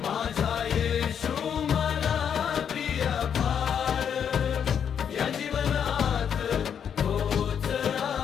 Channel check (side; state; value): right; quieter; 8.0 dB